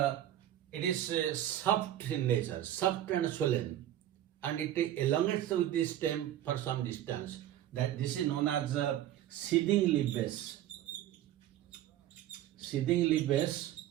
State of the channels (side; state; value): left; quieter; 12.3 dB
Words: it is soft in nature, soft and swollen, and it elongates with the stem for some distance. That this is known as seeding leaf base. Seeding leaf base,